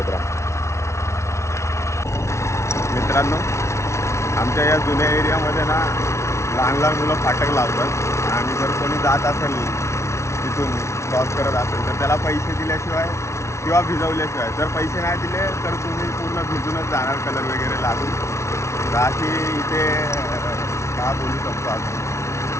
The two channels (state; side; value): late; right; 0.13 ms